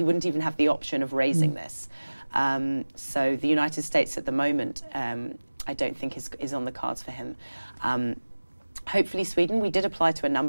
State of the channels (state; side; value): inverted; both; correlation -1.00